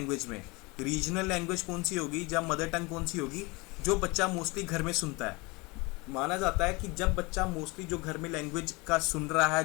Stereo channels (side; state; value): right; quieter; 25.8 dB